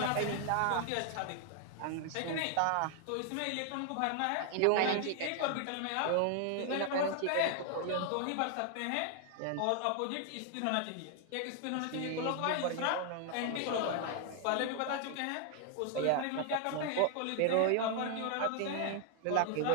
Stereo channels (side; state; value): both; different; correlation 0.00